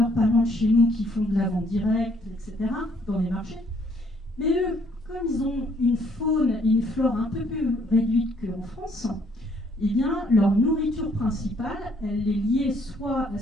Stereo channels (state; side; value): normal; both; correlation 0.65